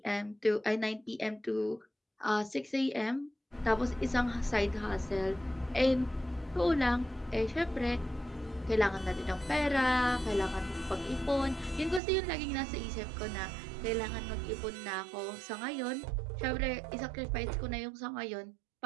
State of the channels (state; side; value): drops out; left; at 12.0 s